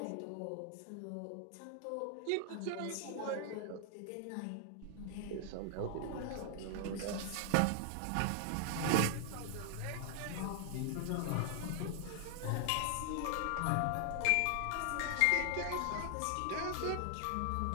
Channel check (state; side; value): different; both; correlation 0.00